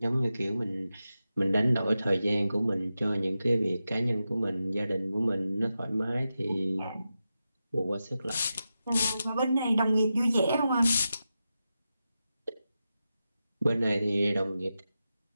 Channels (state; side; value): inverted; both; correlation -0.90